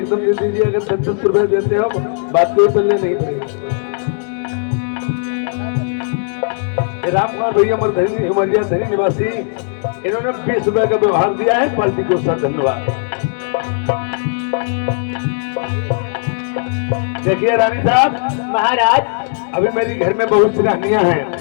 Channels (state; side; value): silent; right; digital silence